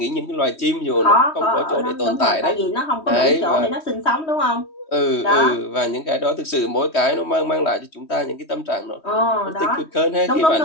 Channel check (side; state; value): right; late; 3.2 ms